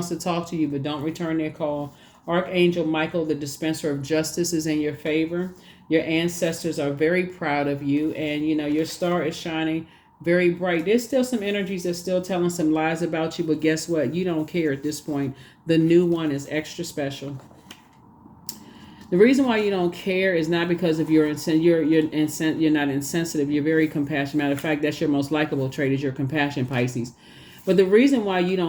to talk to you, but don't return their call. Archangel Michael, the dispenser of justice, is in your favor. Your ancestors are very proud of you, and your star is shining very bright. There's still some energies that's still telling some lies about you, but guess what? You don't care at this point. The new one is extra special. The reason why you don't care is not because of you're not insensitive. You're very compassionate. Matter of fact, that's your most likable trait, is your compassion, Pisces. But the reason why you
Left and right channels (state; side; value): identical; both; correlation 1.00